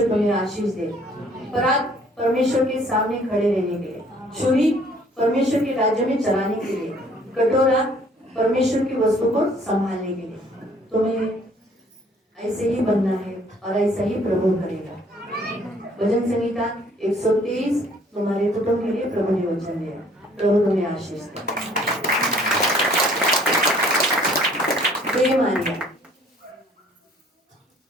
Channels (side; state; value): both; normal; correlation 0.58